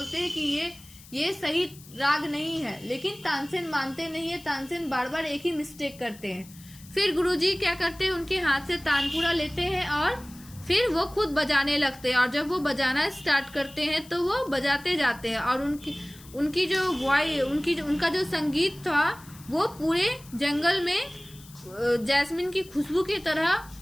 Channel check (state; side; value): noise; left; hiss, 21 dB below the sound